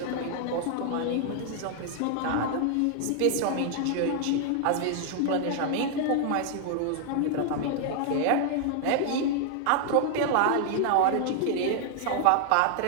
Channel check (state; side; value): different; both; correlation 0.00